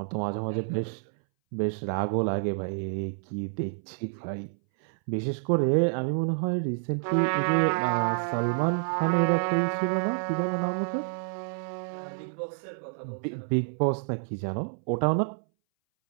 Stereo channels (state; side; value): silent; left; 59 dB below the other